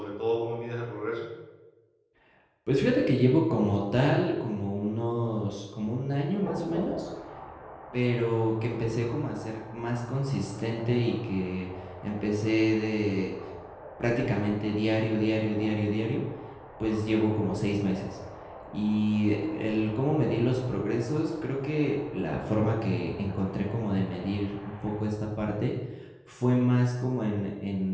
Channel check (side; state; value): both; identical; correlation 1.00